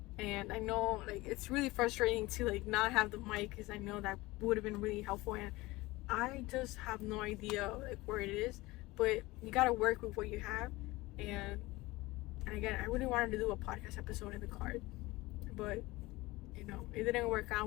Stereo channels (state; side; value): quieter; right; 20.6 dB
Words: And I know like it's really frustrating to like not have the mic, because I know that would have been really helpful, and I just have no idea like where it is. But you gotta work with what you have. And again, I really wanted to do a podcast episode in the car, but you know, it didn't work